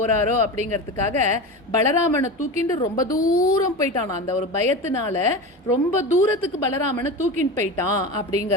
அப்படிங்கிறதுக்காக பலராமனை தூக்கிண்டு ரொம்ப தூரம் போயிட்டானா. அந்த ஒரு பயத்தினால ரொம்ப தூரத்துக்கு பலராமனை தூக்கின்னு போயிட்டான்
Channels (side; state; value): both; normal; correlation 0.26